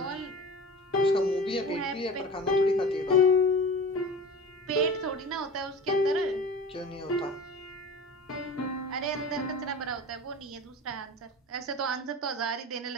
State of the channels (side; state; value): both; normal; correlation 0.35